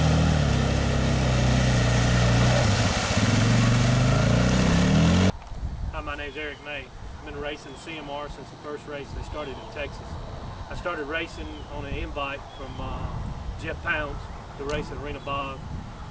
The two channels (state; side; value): identical; both; correlation 1.00